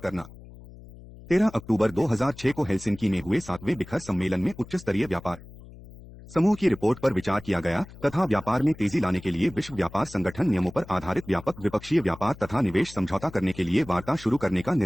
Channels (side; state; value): left; noise; hum, 18 dB below the sound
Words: 13 अक्टूबर 2006 को हेलसिंकी में हुए 7वें शिखर सम्मेलन में उच्च स्तरीय व्यापार समूह की रिपोर्ट पर विचार किया गया तथा व्यापार में तेजी लाने के लिए विश्व व्यापार संगठन नियमों पर आधारित व्यापक द्विपक्षीय व्यापार तथा निवेश समझौता करने के लिए वार्ता शुरू करने का